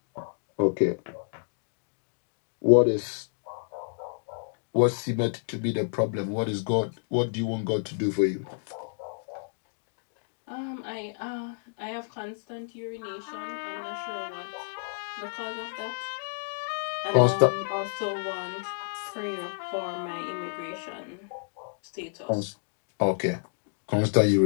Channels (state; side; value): silent; right; digital silence